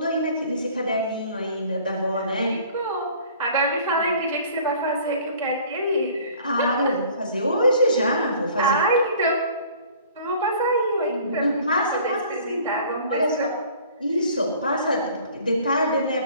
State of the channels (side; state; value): both; inverted; correlation -0.50